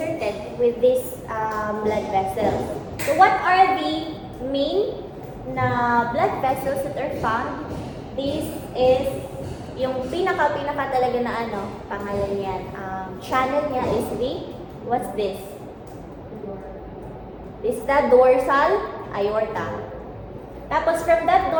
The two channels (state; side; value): identical; both; correlation 1.00